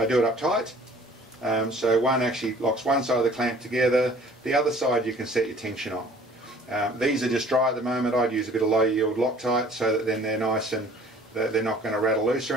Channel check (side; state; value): both; normal; correlation 0.52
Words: do it up tight. So one actually locks one side of the clamp together. The other side you can set your tension on. These are just dry at the moment. I'd use a bit of low yield Loctite so that then they're nice and they're not going to rattle loose or